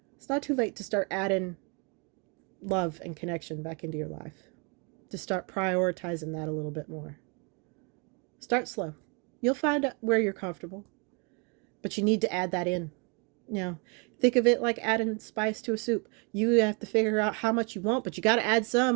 It's not too late to start adding love and connection back into your life. To start prioritizing that a little bit more. Start slow. You'll find out where you're comfortable. But you need to add that in. You know, think of it like adding spice to a soup. You have to figure out how much you want, but you got to add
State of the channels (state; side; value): quieter; left; 33.7 dB